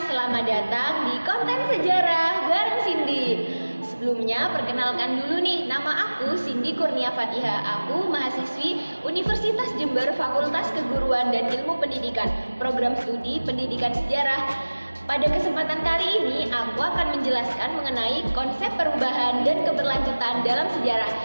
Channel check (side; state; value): both; inverted; correlation -1.00